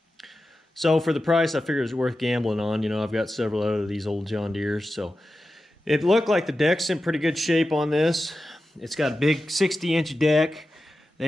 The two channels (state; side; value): normal; both; correlation 0.93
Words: So for the price, I figured it was worth gambling on. You know, I've got several out of these old John Deeres. So it looked like the deck's in pretty good shape on this. It's got a big 60-inch deck.